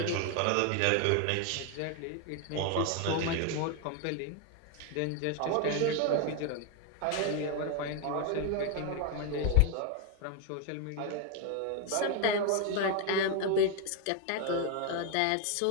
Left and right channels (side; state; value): both; different; correlation 0.01